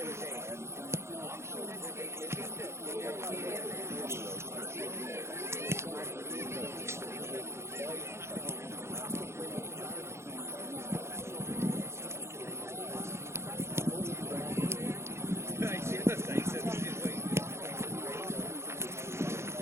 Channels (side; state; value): left; late; 0.13 ms